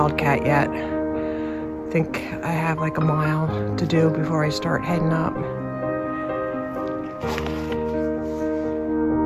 yet. I think I have like a mile to do before I start heading up.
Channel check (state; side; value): identical; both; correlation 1.00